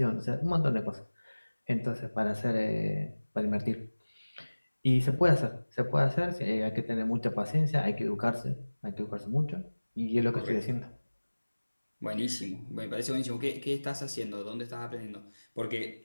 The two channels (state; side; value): inverted; both; correlation -1.00